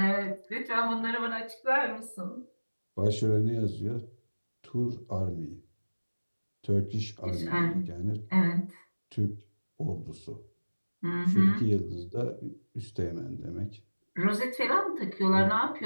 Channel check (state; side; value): inverted; both; correlation -1.00